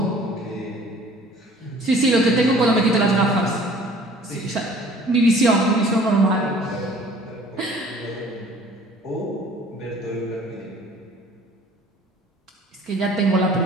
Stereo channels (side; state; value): both; normal; correlation 0.51